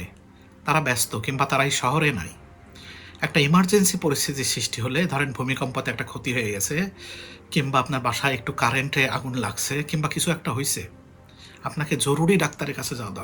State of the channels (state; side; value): identical; both; correlation 1.00